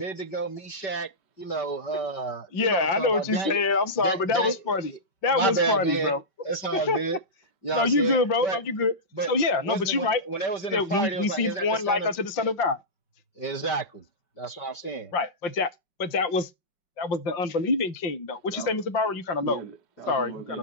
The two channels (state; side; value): late; right; 5.2 ms